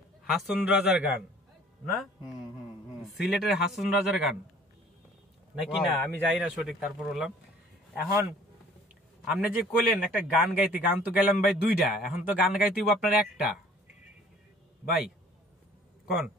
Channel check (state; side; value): normal; both; correlation 0.53